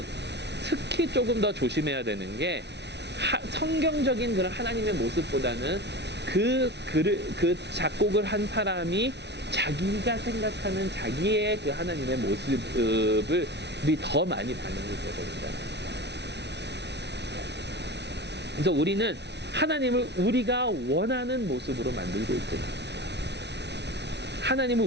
특히 조금 더 조심해야 되는 게, 성경적인 그런 하나님의 모습보다는 그 작곡을 한 사람이 자기가 생각하는 자기의 그 하나님의 모습을 더 많이 반영이 되거든요. 그래서 우리는 하나님을 우리가 원하는 모습으로 만들고 있습니다. 하나님을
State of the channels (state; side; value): late; left; 0.50 ms